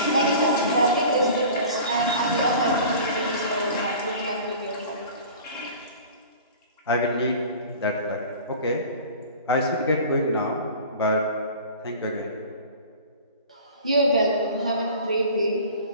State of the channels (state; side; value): inverted; both; correlation -0.41